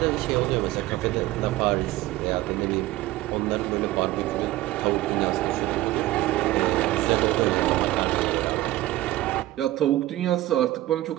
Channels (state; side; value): quieter; left; 16.4 dB